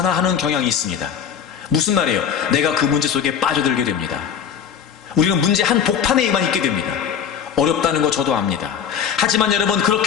경향이 있습니다. 무슨 말이에요? 내가 그 문제 속에 빠져들게 됩니다. 우리는 문제 한 복판에만 있게 됩니다. 어렵다는 거 저도 압니다. 하지만 여러분,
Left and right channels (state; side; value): quieter; right; 8.1 dB